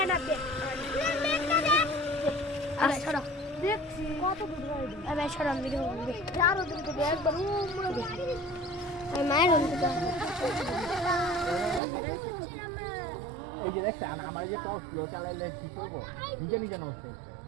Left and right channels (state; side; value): drops out; left; at 11.8 s